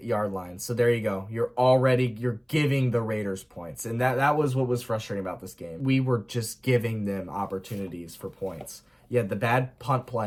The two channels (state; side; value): identical; both; correlation 1.00